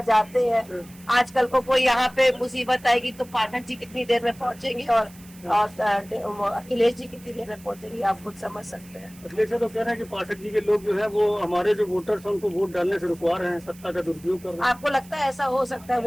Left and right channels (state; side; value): noise; right; hiss, 23 dB below the sound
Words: जाते हैं। आजकल को कोई यहाँ पे मुसीबत आएगी तो पाठक जी कितनी देर में पहुंचेंगे और अखिलेश जी कितनी देर में पहुंचेंगे, आप खुद समझ सकते हैं। अखिलेश यादव कह रहे हैं कि पाठक जी के लोग जो है वो हमारे जो वोटर्स हैं उनको वोट डालने से रुकवा रहे हैं, सत्ता का दुरुपयोग कर रहे हैं। आपको लगता है ऐसा हो सकता है?